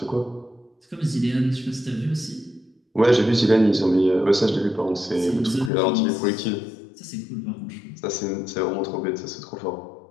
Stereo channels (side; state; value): right; drops out; at 5.7 s